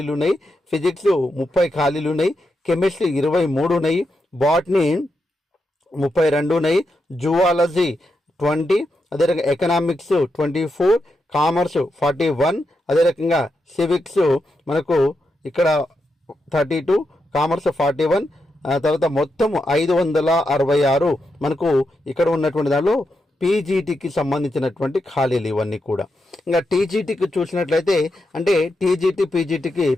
ఉన్నాయి. ఫిజిక్స్ 30 ఖాళీలు ఉన్నాయి. కెమిస్ట్రీ 23 ఉన్నాయి. బాటనీ 32 ఉన్నాయి. జువాలజీ 20, అదే రకంగా ఎకనామిక్స్ 24, కామర్స్ 41, అదే రకంగా సివిక్స్ మనకు ఇక్కడ 32, కామర్స్ 41, తర్వాత మొత్తం 566 మనకు ఇక్కడ ఉన్నటువంటి దానిలో పీజీటీకి సంబంధించినటువంటి ఖాళీలు ఇవన్నీ కూడా. ఇంకా టీజీటీకి చూసినట్లయితే అంటే టీజీటీ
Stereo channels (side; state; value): both; normal; correlation 0.85